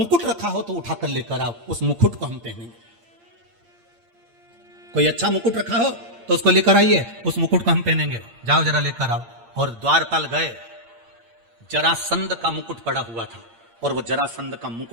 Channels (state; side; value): late; left; 8.7 ms